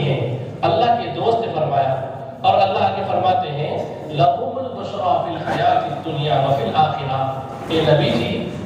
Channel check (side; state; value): both; identical; correlation 1.00